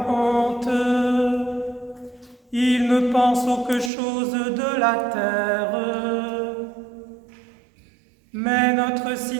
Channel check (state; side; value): drops out; left; at 3.9 s